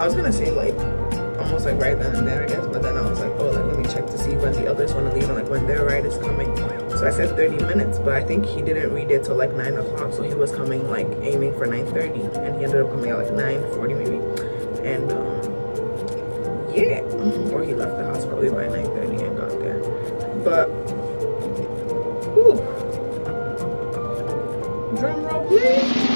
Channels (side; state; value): both; inverted; correlation -1.00